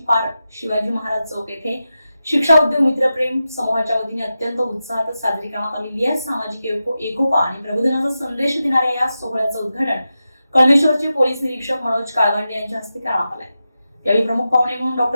पार शिवाजी महाराज चौक येथे शिक्षा उद्योग मित्रप्रेम समूहाच्या वतीने अत्यंत उत्साहात साजरी करण्यात आलेली आहे। सामाजिक एकोपा आणि प्रबोधनाचा संदेश देणाऱ्या या सोहळ्याचं उद्घाटन कळमेश्वरचे पोलीस निरीक्षक मनोज काळगंडे यांच्या हस्ते करण्यात आले। यावेळी प्रमुख पाहुणे म्हणून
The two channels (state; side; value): inverted; both; correlation -0.91